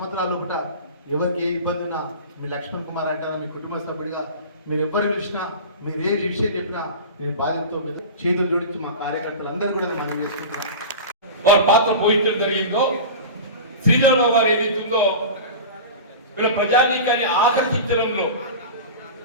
కూడా ఎవరికి ఏ ఇబ్బంది ఉన్నా మీ లక్ష్మణ్ కుమార్ అంటారా మీ కుటుంబ సభ్యుడిగా మీరు ఎవరు పిలిచినా, మీరు ఏ విషయం చెప్పినా నేను బాధ్యతతో మీద చేతులు జోడించి మా కార్యకర్తలు అందరూ కూడా మనం చేసుకుంటున్నాం. వారి పాత్ర పోయించడం జరిగిందో, శ్రీధరరావు వారు ఏదైతుందో వీళ్ళ ప్రజానీకాన్ని ఆకర్షించడంలో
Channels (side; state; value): both; inverted; correlation -0.31